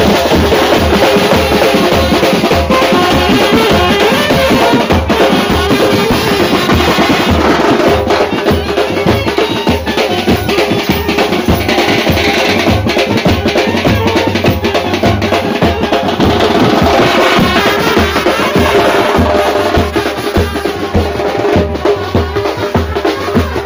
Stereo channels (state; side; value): identical; both; correlation 1.00